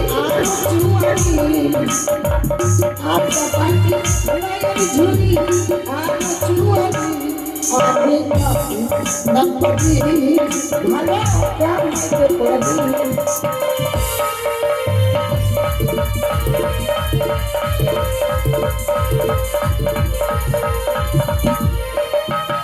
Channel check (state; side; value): identical; both; correlation 1.00